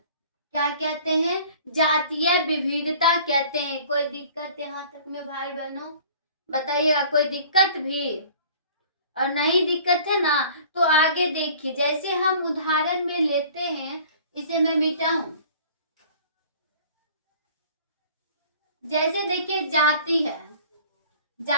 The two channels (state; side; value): inverted; both; correlation -0.49